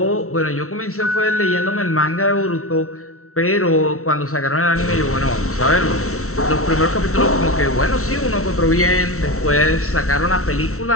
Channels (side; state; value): right; late; 0.63 ms